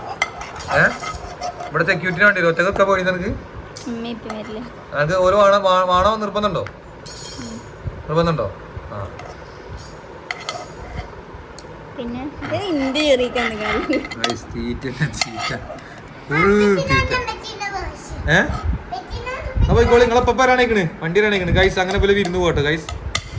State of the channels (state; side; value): identical; both; correlation 1.00